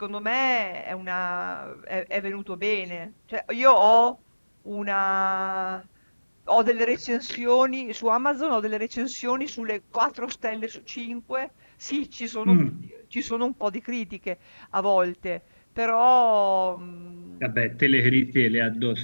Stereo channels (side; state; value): both; inverted; correlation -1.00